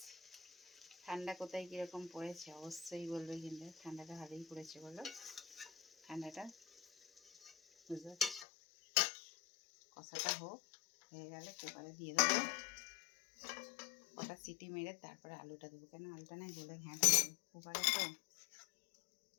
ঠান্ডা কোথায় কীরকম পড়েছে অবশ্যই বলবে, কিন্তু ঠান্ডাটা ভালোই পড়েছে বলো। ঠান্ডাটা বুঝতে পারছি। কষাটা হয়ে গেলে কুকারে দিয়ে দেবো, কটা সিটি মেরে তারপরে আলুটা দেবো। কেন আলুটা নাই বলে ঘ্যাঁট দেবো কুকারে তো।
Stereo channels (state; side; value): drops out; right; at 8.5 s